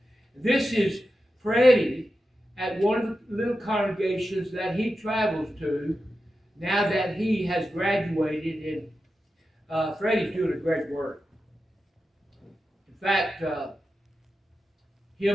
This is Freddie at one of the little congregations that he travels to now that he has graduated, and Freddie's doing a great work. In fact,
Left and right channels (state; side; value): normal; both; correlation 0.91